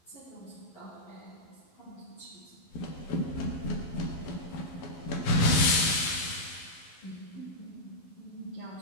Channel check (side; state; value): right; late; 12 ms